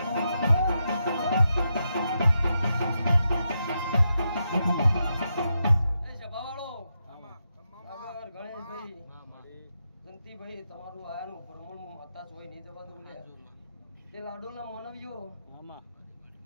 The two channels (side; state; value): both; inverted; correlation -0.85